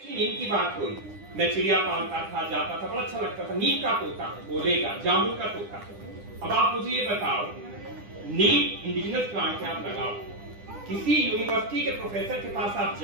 नींद की बात हुई, मैं चिड़िया पालता था, जाता था, बड़ा अच्छा लगता था। नींद का तोता बोलेगा, जामुन का तोता। अब आप मुझे ये बताओ, नीम इंडिजिनस प्लांट है, आप लगाओ, किसी यूनिवर्सिटी के प्रोफेसर के पास आप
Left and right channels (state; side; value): late; left; 9.9 ms